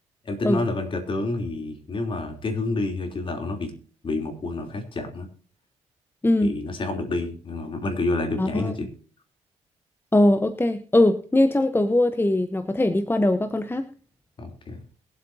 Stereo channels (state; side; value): normal; both; correlation 0.89